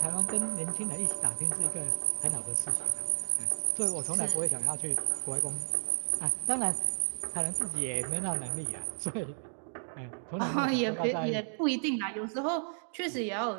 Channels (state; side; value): silent; left; 56 dB below the other